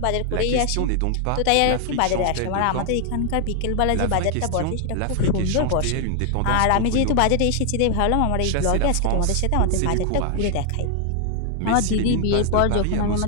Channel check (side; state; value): both; different; correlation 0.00